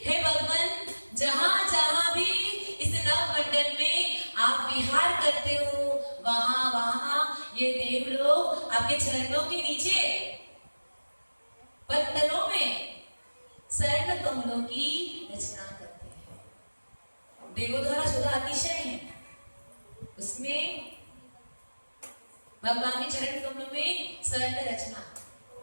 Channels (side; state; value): both; inverted; correlation -1.00